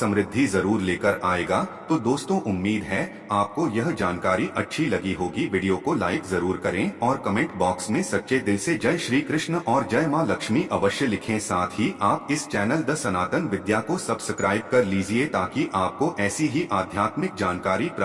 जरूर लेकर आएगा। तो दोस्तों, उम्मीद है आपको यह जानकारी अच्छी लगी होगी। वीडियो को लाइक जरूर करें और कमेंट बॉक्स में सच्चे दिल से जय श्री कृष्ण और जय मां लक्ष्मी अवश्य लिखें। साथ ही आप इस चैनल द सनातन विद्या को सब्सक्राइब कर लीजिए ताकि आपको ऐसी ही आध्यात्मिक जानकारी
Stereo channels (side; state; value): both; identical; correlation 1.00